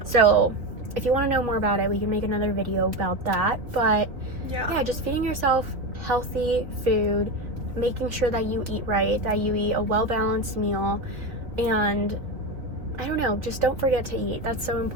So if you want to know more about it, we can make another video about that. But yeah, just feeding yourself healthy food, making sure that you eat right, that you eat a well-balanced meal, and I don't know, just don't forget to eat. That's so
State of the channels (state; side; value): late; left; 3.2 ms